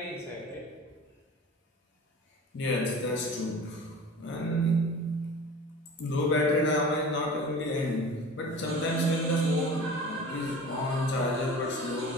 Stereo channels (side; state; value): both; normal; correlation 0.39